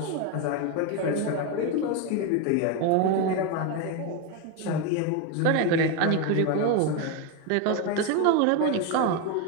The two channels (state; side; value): different; both; correlation 0.02